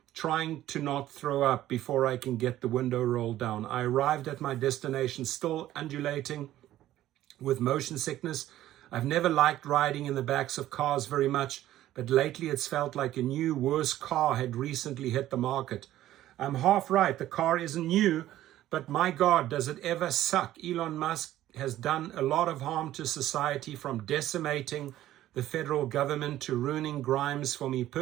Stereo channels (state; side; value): quieter; left; 13.7 dB